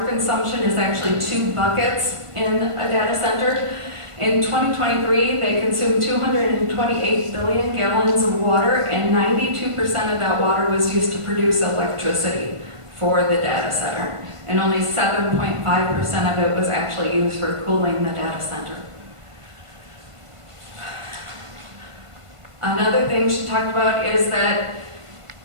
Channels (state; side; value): late; left; 1.5 ms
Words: consumption is actually 2 buckets in a data center. In 2023, they consumed 228 billion gallons of water, and 92% of that water was used to produce electricity for the data center. And only 7.5% of it was actually used for cooling the data center. Another thing she talked about is that